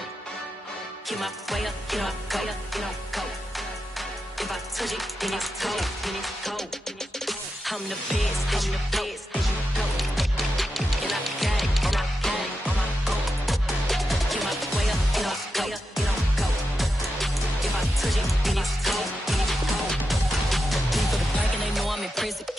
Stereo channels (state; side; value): normal; both; correlation 0.88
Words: Get my way up, get my way up, get on go. If I touch it, then it's cold, then it's cold. I'm the best, and the best, and I got it, and I got it on my own. Get my way up, get my way up, get on go. If I touch it, then it's cold, then it's cold. Leave for the park and they know I'm impressive.